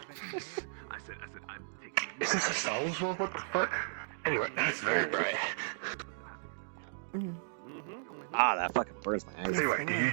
Is this a Star Wars world? What the fuck? Anyway, that's very bright. Ah, that fucking burns my eyes. Anyway, do you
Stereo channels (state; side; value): silent; left; digital silence